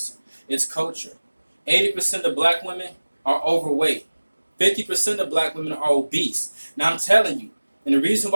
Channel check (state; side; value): inverted; both; correlation -1.00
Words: It's culture. 80% of black women are overweight. 50% of black women are obese. Now I'm telling you, and the reason